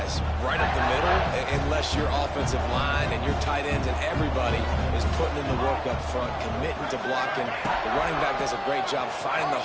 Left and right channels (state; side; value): identical; both; correlation 1.00